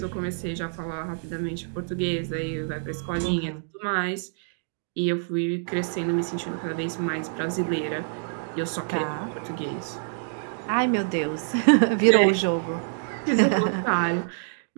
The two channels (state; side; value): silent; left; digital silence